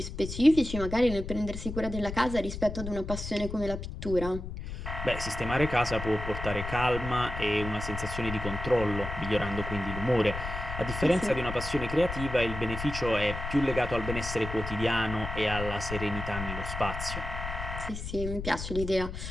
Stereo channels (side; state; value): left; noise; rumble, 7 dB below the sound